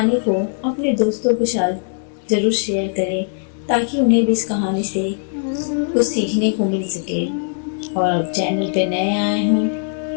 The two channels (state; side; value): silent; right; digital silence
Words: को अपने दोस्तों के साथ ज़रूर शेयर करें ताकि उन्हें भी इस कहानी से कुछ सीखने को मिल सके। और अब चैनल पे नए आए